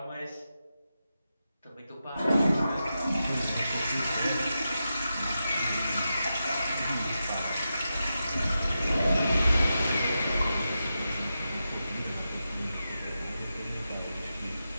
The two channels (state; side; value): inverted; both; correlation -0.89